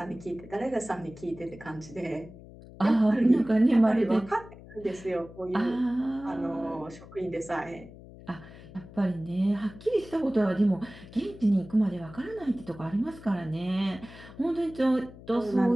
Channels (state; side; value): noise; left; hum, 18 dB below the sound